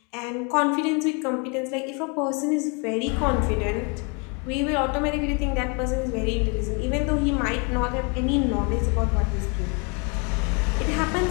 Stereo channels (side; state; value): right; quieter; 33.4 dB